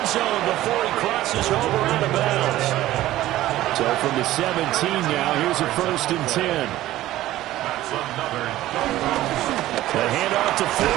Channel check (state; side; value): quieter; left; 15.0 dB